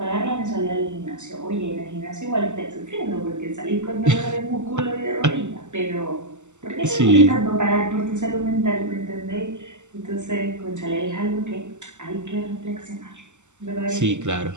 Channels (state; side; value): late; left; 0.84 ms